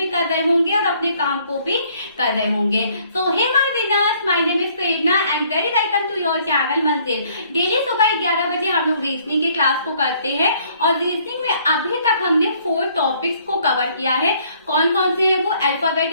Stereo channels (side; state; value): both; inverted; correlation -0.62